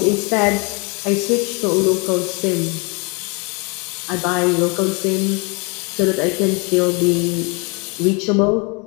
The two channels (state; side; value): quieter; right; 31.5 dB